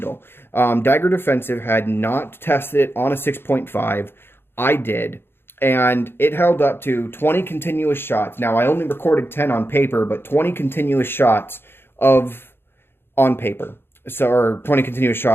Dagger Defensive had not tested it on a 6.5. I did, and it held up to 20 continuous shots. Now, I only recorded 10 on paper, but 20 continuous shots on paper. So, or 20 continuous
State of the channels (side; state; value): right; late; 0.11 ms